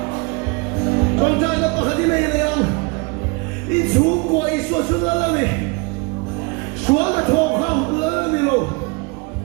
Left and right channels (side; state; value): left; quieter; 29.0 dB